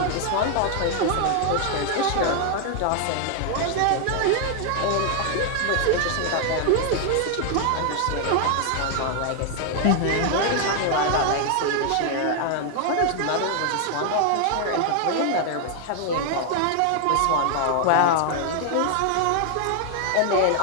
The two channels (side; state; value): both; different; correlation 0.00